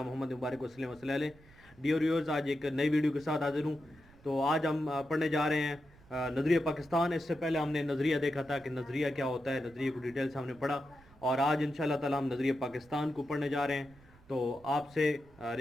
मोहम्मद मुबारक वसल्लम वसल्लम अलैहि। डियर व्यूअर्स, आज एक नई वीडियो के साथ हाजिर हूँ। तो आज हम पढ़ने जा रहे हैं नज़रिया पाकिस्तान। इससे पहले हमने नज़रिया देखा था कि नज़रिया क्या होता है, नज़रिए को डिटेल से हमने पढ़ा, और आज इंशाअल्लाह ताला हम नज़रिया पाकिस्तान को पढ़ने जा रहे हैं। तो आपसे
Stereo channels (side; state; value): right; noise; rumble, 25 dB below the sound